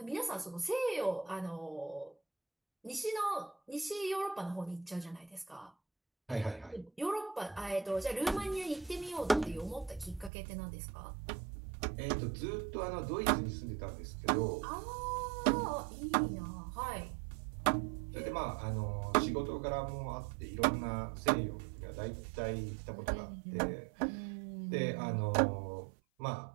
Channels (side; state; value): left; drops out; at 10.3 s